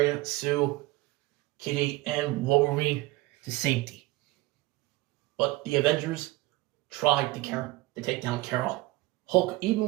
Sue, Kitty, and Wolverine to safety. But the Avengers tried to take down Carol. Hulk, even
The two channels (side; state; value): left; quieter; 19.8 dB